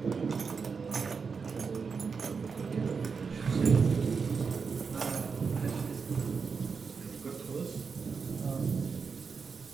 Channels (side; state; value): left; quieter; 5.4 dB